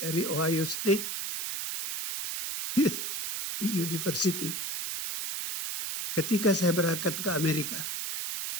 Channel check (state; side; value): noise; right; hiss, 4 dB below the sound